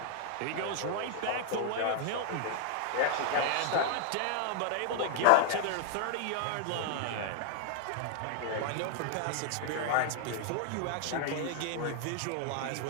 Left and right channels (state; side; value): different; both; correlation 0.00